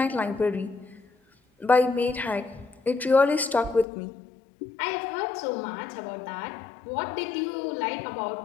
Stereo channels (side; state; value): right; drops out; at 3.9 s